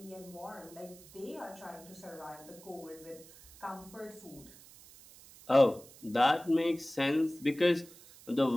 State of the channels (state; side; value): noise; right; hiss, 21 dB below the sound